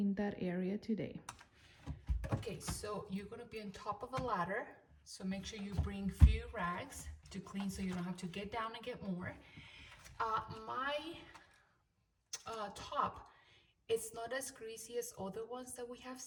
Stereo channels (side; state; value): both; identical; correlation 1.00